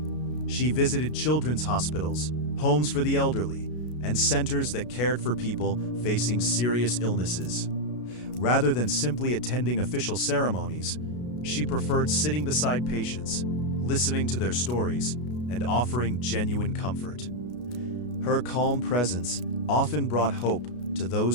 She visited children's hospitals, homes for the elderly, and centers that cared for people facing serious illnesses. Rather than simply attending official ceremonies, she preferred sitting beside patients, listening to their stories, and offering genuine comfort. Her calm presence often brought hope to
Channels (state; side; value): late; right; 33 ms